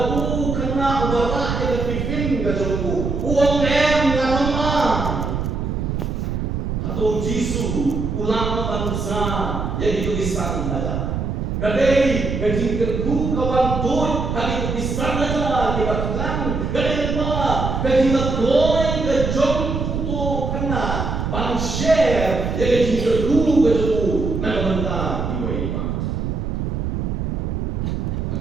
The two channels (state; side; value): noise; right; rumble, 2 dB below the sound